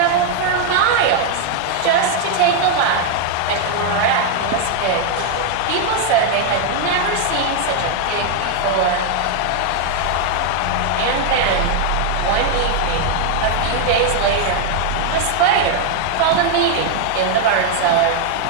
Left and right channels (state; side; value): different; both; correlation 0.00